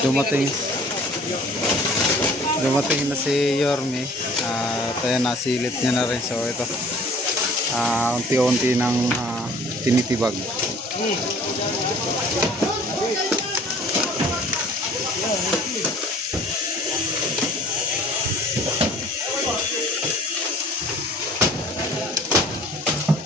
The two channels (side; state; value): both; normal; correlation 0.51